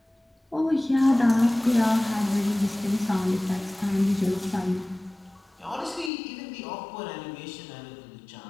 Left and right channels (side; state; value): right; drops out; at 6.1 s